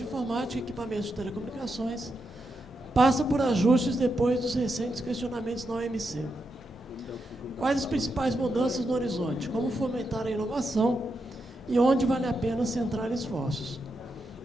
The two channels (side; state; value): both; normal; correlation 0.84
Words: informática e equipamentos de telecomunicações passa por ajustes depois dos recentes questionamentos na OMC. Quais as principais mudanças no horizonte? Como fomentar a inovação e onde vale a pena centrar esforços?